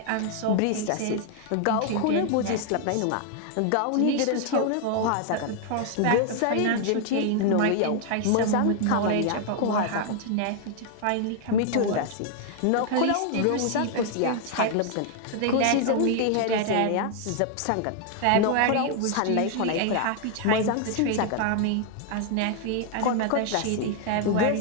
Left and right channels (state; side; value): different; both; correlation 0.00